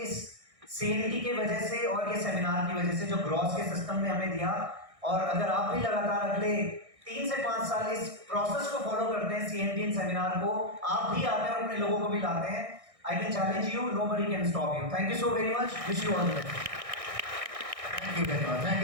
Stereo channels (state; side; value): late; left; 1.6 ms